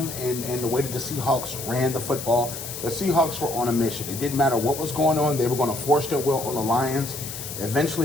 and the way that the Seahawks ran the football, the Seahawks were on a mission. It didn't matter what was going on, they were going to force their will on the Lions.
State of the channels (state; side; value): noise; left; hiss, 8 dB below the sound